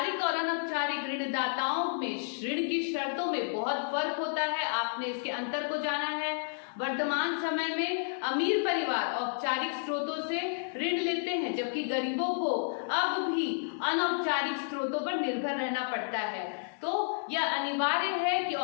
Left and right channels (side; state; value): right; silent; digital silence